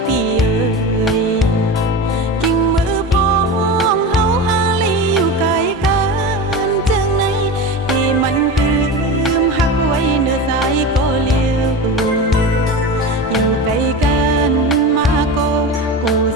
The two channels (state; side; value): normal; both; correlation 0.26